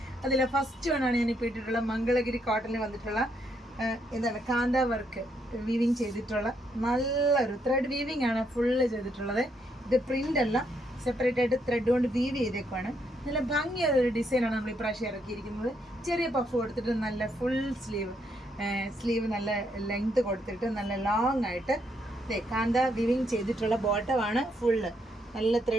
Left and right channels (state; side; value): normal; both; correlation 0.75